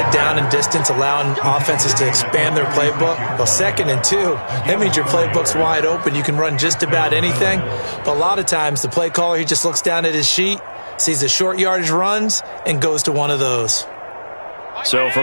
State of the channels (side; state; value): both; inverted; correlation -1.00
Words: down and distance, allowing offenses to expand their playbook. Well, 2nd and 2, that means your playbook's wide open. You can run just about anything. But a lot of times, the play caller, he just looks down at his sheet, sees the short yardage runs, and goes to one of those. So